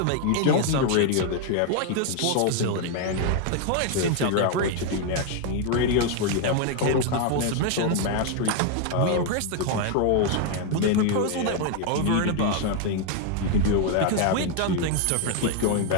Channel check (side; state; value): both; different; correlation 0.01